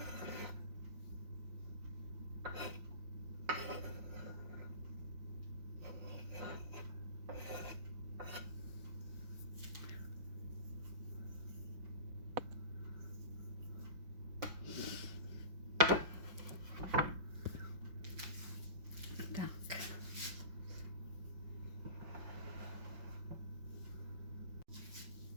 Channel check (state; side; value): late; left; 5.6 ms